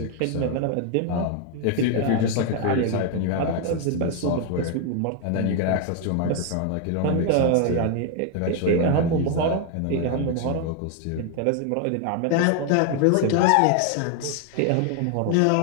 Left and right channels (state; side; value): different; both; correlation 0.01